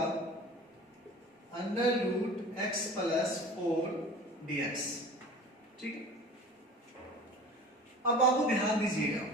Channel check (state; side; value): normal; both; correlation 0.40